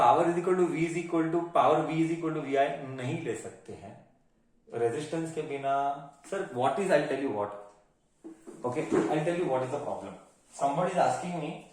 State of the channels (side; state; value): both; identical; correlation 1.00